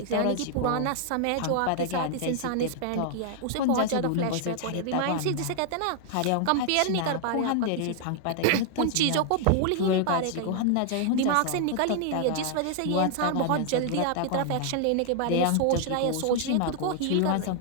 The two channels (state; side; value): different; both; correlation 0.00